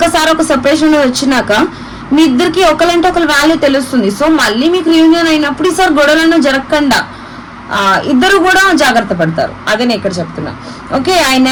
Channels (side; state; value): both; identical; correlation 1.00